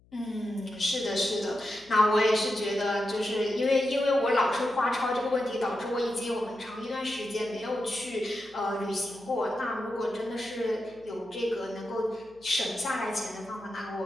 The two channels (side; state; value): left; noise; hum, 30 dB below the sound